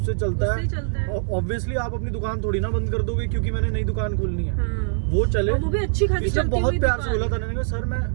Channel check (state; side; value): silent; left; digital silence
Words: चलता है, ऑब्वियसली आप अपनी दुकान थोड़ी ना बंद कर दोगे क्योंकि मैंने नई दुकान खोलनी है। वो चले, और वो भी अच्छी खासी इसने चलती बहुत हुई प्यार से दुकान। बोला था, मैंने कहा सर